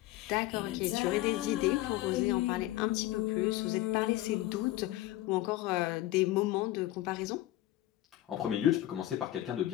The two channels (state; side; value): quieter; right; 15.6 dB